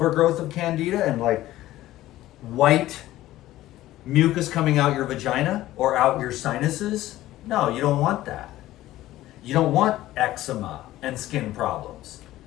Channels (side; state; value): right; quieter; 15.3 dB